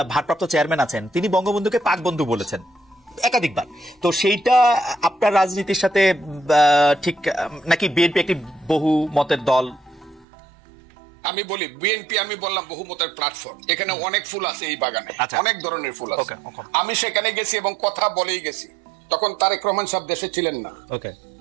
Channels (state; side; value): drops out; left; at 10.2 s